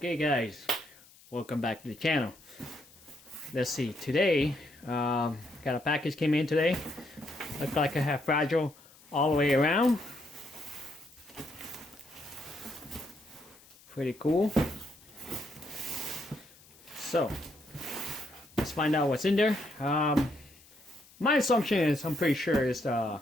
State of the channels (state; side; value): noise; left; hiss, 25 dB below the sound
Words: guys, welcome back to the channel. Let's see, today got a package came in today. Looks like I have fragile all the way around. Pretty cool. So let's find out what's in there. My assumption is I'm pretty sure it's the